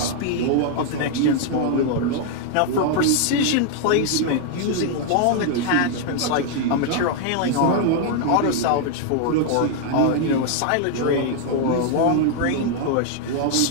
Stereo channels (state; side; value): different; both; correlation 0.00